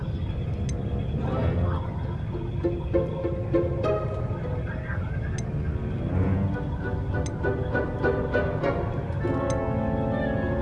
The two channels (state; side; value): identical; both; correlation 1.00